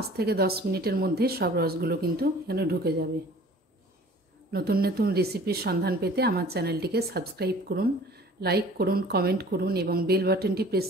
থেকে 10 মিনিটের মধ্যে সব রসগুলো কিন্তু এখানে ঢুকে যাবে। নতুন নতুন রেসিপির সন্ধান পেতে আমার চ্যানেলটিকে সাবস্ক্রাইব করুন, লাইক করুন, কমেন্ট করুন এবং বেল বাটনটি প্রেস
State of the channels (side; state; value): both; normal; correlation 0.48